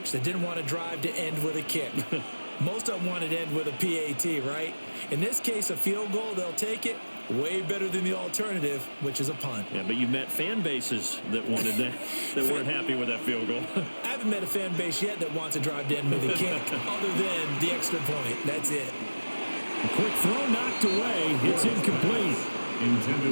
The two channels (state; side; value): inverted; both; correlation -1.00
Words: that didn't want to drive to end with a kick. Most of them wanted to end with a PAT, right? In this case, a field goal, they'll take it. Way better than the alternative, which is a punt. Yeah, but you met fan bases that wanted that, that weren't happy with that field goal. I haven't met a fan base yet that wants to drive to end with a kick, other than the extra point. That's it. A quick throw knocked away. It's incomplete.